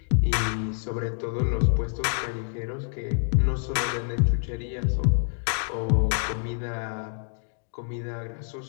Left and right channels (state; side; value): silent; right; digital silence